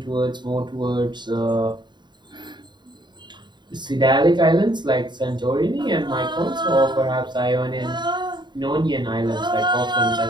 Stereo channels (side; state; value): left; late; 0.22 ms